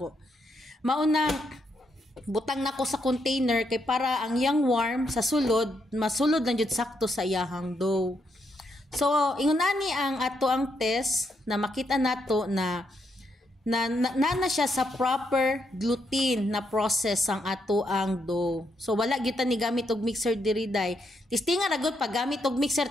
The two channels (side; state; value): both; normal; correlation 0.78